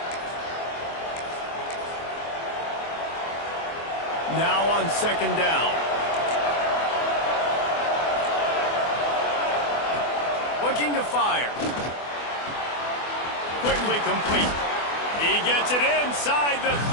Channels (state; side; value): late; right; 24 ms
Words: Now on second down. Looking to fire. Quickly complete. He gets it inside the